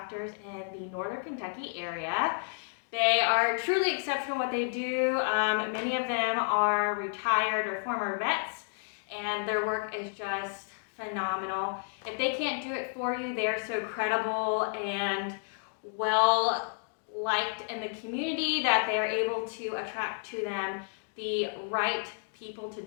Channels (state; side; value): silent; right; digital silence